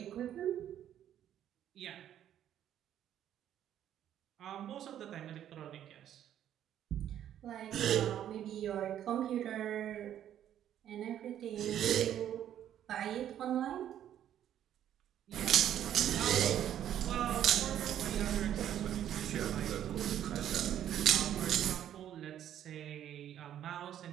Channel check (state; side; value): quieter; left; 10.8 dB